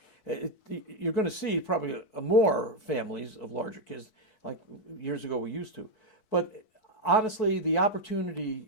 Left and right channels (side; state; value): right; late; 4.6 ms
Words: you're going to see probably more families of larger kids like years ago we used to. But honestly, the opportunity